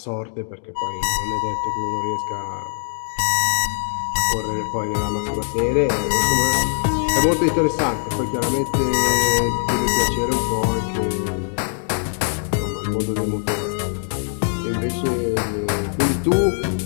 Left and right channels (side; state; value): right; silent; 63 dB below the other